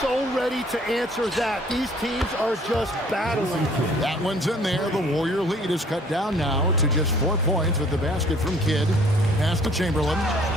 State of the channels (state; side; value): normal; both; correlation 0.57